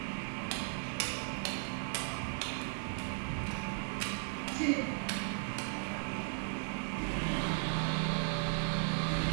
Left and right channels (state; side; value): silent; left; 53 dB below the other